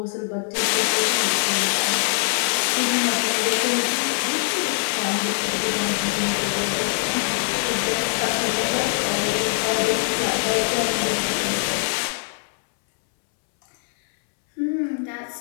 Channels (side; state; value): right; silent; 64 dB below the other